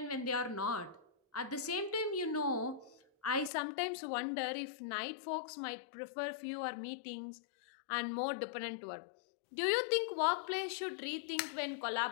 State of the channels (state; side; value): drops out; right; at 3.5 s